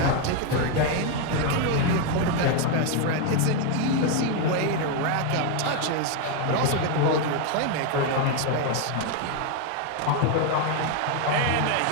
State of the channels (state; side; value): different; both; correlation 0.01